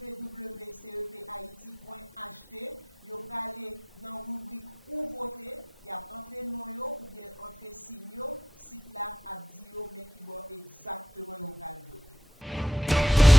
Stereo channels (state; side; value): normal; both; correlation 0.80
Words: yo aller dans rubrique où voter, y a entrer nom yo ou bien entrer signe yo, site là a dit yo mais qui va exactement yo va voter.